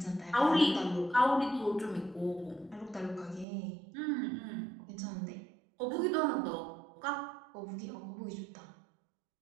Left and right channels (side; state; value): left; drops out; at 3.5 s